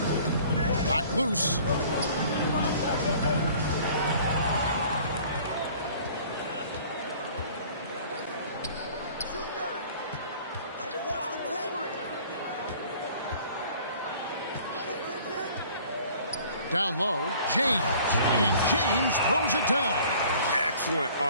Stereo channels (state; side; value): inverted; both; correlation -0.51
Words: Knocked loose. Down low, James. And James throws it down. Excellent